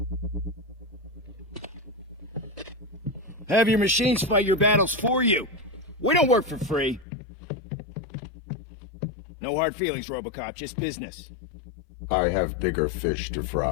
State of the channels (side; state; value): right; drops out; at 7.1 s